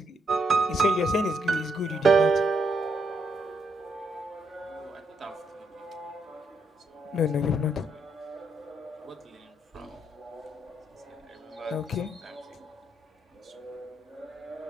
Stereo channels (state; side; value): normal; both; correlation 0.77